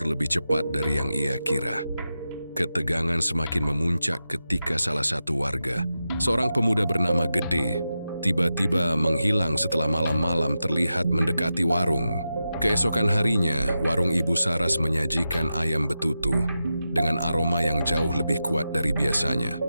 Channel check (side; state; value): both; inverted; correlation -0.91